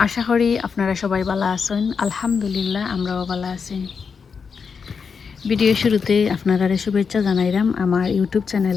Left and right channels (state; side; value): quieter; right; 5.8 dB